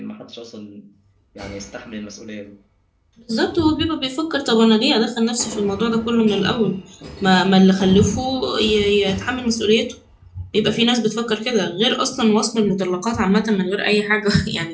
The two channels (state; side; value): identical; both; correlation 1.00